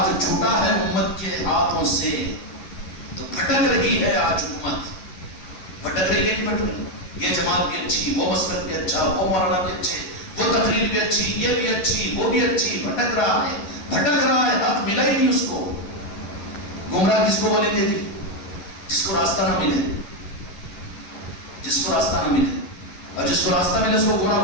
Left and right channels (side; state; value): right; late; 11 ms